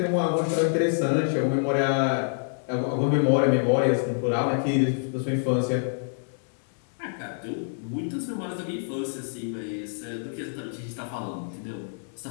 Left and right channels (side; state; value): right; silent; 60 dB below the other